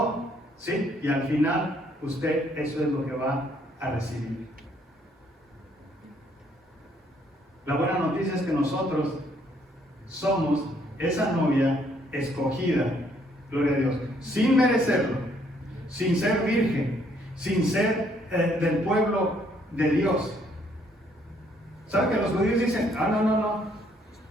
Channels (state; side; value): normal; both; correlation 0.67